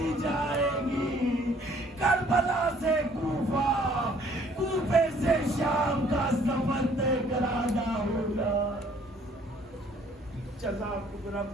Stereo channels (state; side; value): normal; both; correlation 0.60